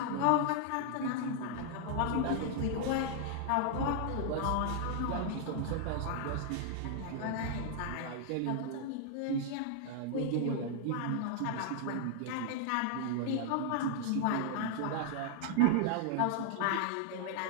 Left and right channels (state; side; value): different; both; correlation 0.00